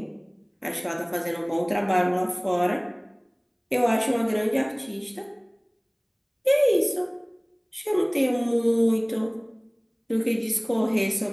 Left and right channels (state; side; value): identical; both; correlation 1.00